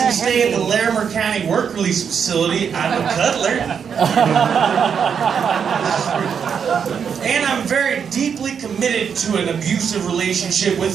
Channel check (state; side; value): quieter; left; 7.1 dB